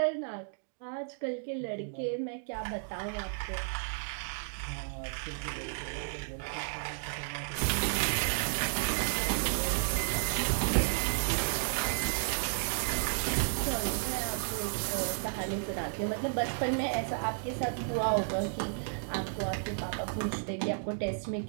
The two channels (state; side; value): silent; left; digital silence